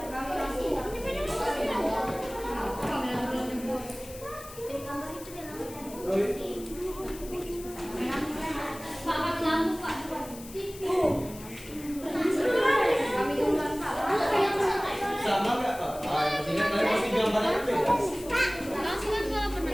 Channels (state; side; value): noise; left; hiss, 16 dB below the sound